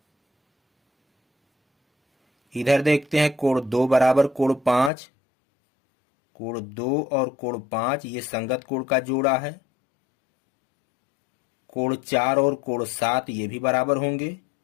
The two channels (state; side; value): drops out; right; at 4.9 s